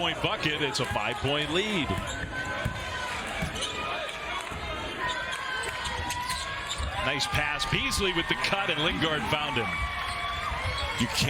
bucket. It's a 5-point lead. Nice pass. Beasley with the cut, and Lingard found him. You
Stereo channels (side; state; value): both; identical; correlation 1.00